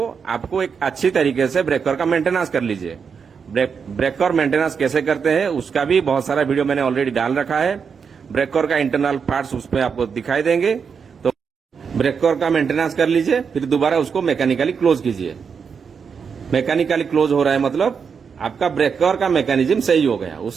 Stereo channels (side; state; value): left; quieter; 6.2 dB